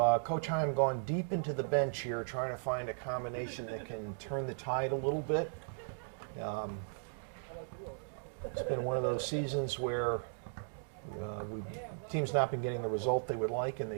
Coach Heim gone deep into the bench here, trying to find a combination that can turn the tide a little bit. It's been one of those seasons where teams not been getting the result they would like, and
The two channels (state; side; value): silent; left; digital silence